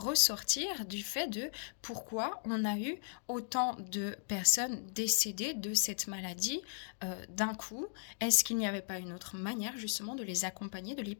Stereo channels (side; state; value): right; silent; digital silence